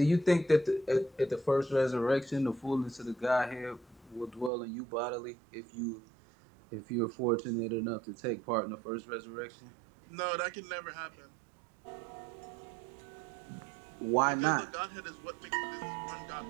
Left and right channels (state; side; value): drops out; left; at 4.5 s